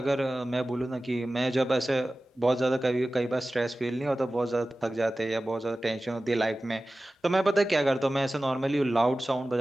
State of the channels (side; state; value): both; normal; correlation 0.96